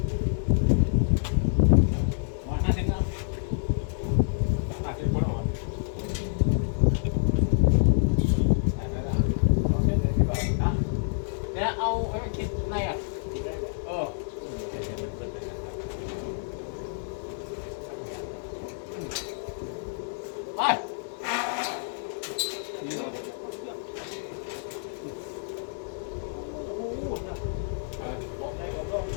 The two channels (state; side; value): silent; right; 59 dB below the other